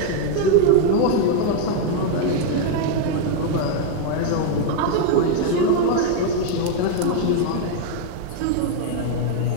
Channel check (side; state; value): both; different; correlation 0.00